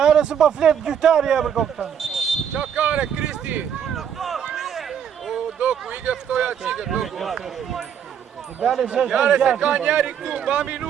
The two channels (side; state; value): left; quieter; 8.4 dB